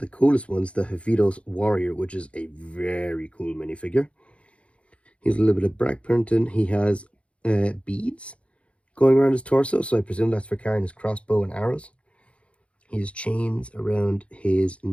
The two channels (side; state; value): right; late; 0.061 ms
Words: coolest ones, the Havidos Warrior, which is a very cool minifigure. He's a little bit of black printing. He has beads going around his torso, so I presume that's for carrying his crossbow and arrows. He has chains around his